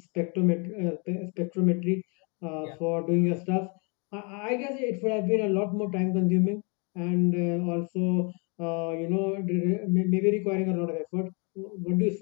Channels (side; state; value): right; quieter; 34.2 dB